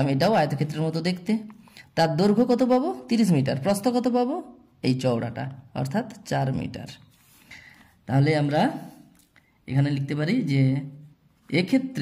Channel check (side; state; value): both; identical; correlation 1.00